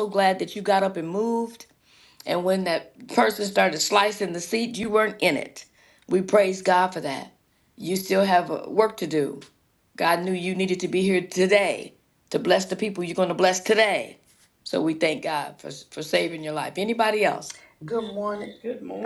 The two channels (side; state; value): both; identical; correlation 1.00